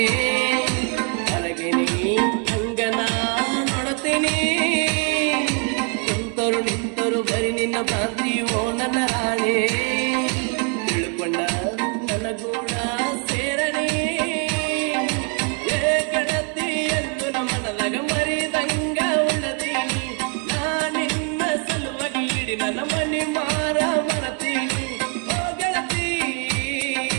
ಹೊರಗಿನಿ ಹಂಗನ ನೋಡುತ್ತೀನಿ ಕುಂತರು ನಿಂತರು ಬರಿ ನಿನ್ನ ಭ್ರಾಂತಿಯೋ ನನ್ನ ರಾಣೆ ತಿಳ್ಕೊಂಡ ನನಗೂಡ ಸೇರನೆ ಗೆಳತಿ ಎಂದು ನಮ್ಮನದಾಗ ಮರಿದಂಗ ಉಳದೀನಿ ನಾ ನಿನ್ನ ಸಲುವಾಗಿ ಇಡಿ ನನ್ನ ಮನಿ ಮಾರ ಮರತೀನಿ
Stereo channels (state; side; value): quieter; left; 38.8 dB